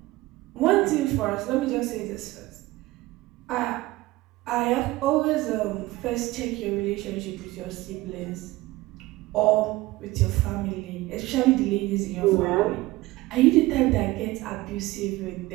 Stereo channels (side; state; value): left; quieter; 19.2 dB